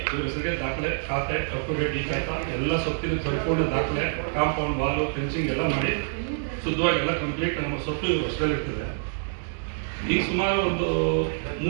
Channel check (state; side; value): silent; left; 61 dB below the other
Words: ಇವ್ರ ಹೆಸರಿಗೆ ದಾಖಲೆ, ಖಾತೆ, ಅಪ್ಟುಡೇಟ್ ಈ ಖಾತಾ ಎಲ್ಲ ಸ್ವತ್ತಿನ ಸಂಪೂರ್ಣ ದಾಖಲೆ, ಕಾಂಪೌಂಡ್ ವಾಲು, ಫೆನ್ಸಿಂಗ್ ಎಲ್ಲ ಮಾಡಿ ಶುದ್ಧವಾಗಿ ಎಲ್ಲ ಕಂಪ್ಲೀಟ್ ನಮ್ಮ ಸ್ವತ್ತು ಇವ್ರ ವರ್ಷದಲ್ಲಿರ್ತದೆ. ಈಗ ಸುಮಾರು ಒಂದು